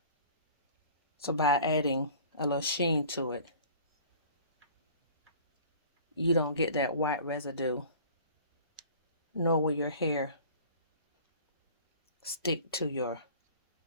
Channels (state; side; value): inverted; both; correlation -0.45